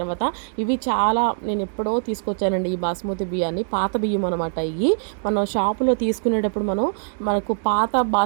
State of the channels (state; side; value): silent; left; digital silence